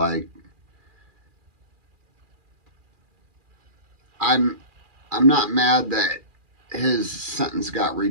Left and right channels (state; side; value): late; left; 2.4 ms